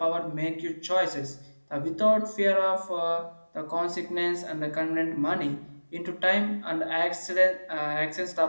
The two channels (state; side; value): inverted; both; correlation -1.00